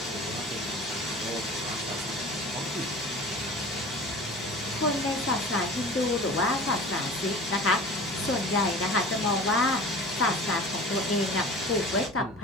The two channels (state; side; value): normal; both; correlation 0.39